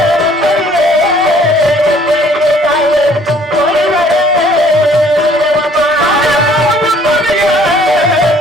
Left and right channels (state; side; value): normal; both; correlation 0.58